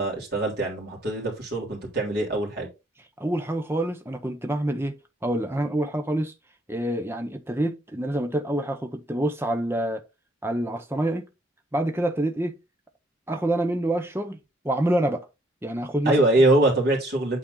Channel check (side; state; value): both; normal; correlation 0.68